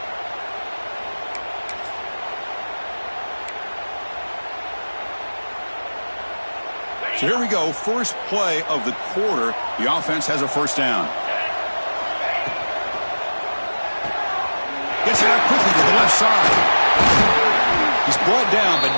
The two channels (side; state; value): both; inverted; correlation -1.00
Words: So here we go, first play of the quarter. The offense has a first down. Gets it out quickly to the left side. He's brought down, but